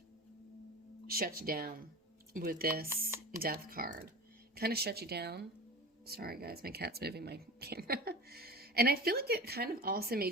shuts you down with this Death card. Kind of shut you down. Sorry, guys, my cat's moving my camera. And I feel like it kind of also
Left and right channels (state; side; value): normal; both; correlation 0.33